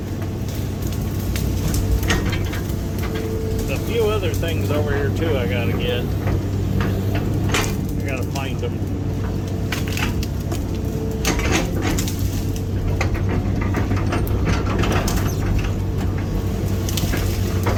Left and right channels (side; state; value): both; identical; correlation 1.00